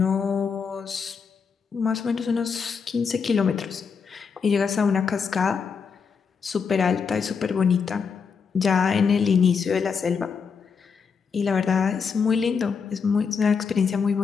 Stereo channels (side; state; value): right; quieter; 5.9 dB